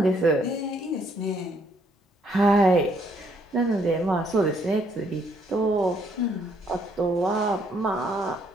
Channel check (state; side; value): normal; both; correlation 0.68